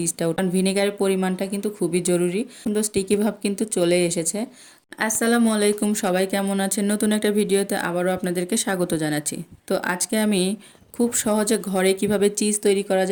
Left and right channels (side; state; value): both; identical; correlation 1.00